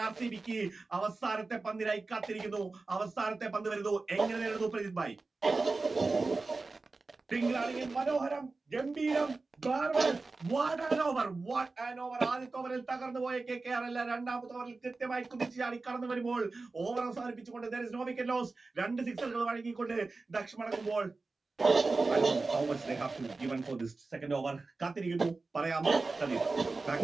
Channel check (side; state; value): left; quieter; 3.7 dB